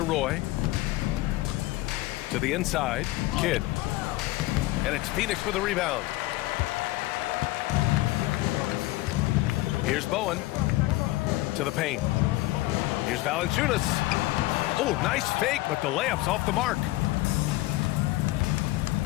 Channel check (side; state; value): right; quieter; 18.7 dB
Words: Roy. To the inside. Kidd. And it's Phoenix for the rebound. Here's Bowen. To the paint. Here's Valanciunas. Oh, nice fake, but the layup's off the mark.